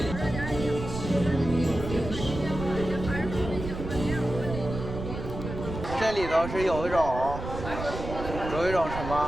这里头是有一种什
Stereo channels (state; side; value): noise; right; rumble, 7 dB below the sound